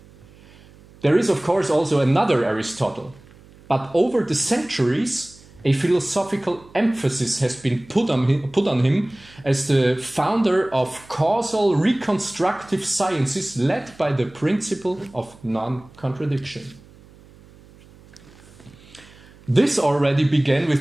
There is, of course, also another Aristotle, but over the centuries, a philosophical emphasis has been put on him as the founder of causal reconstructive sciences led by the principle of non-contradiction. This already began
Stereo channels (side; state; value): right; noise; hum, 24 dB below the sound